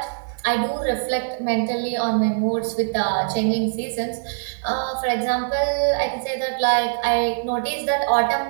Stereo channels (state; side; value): silent; left; digital silence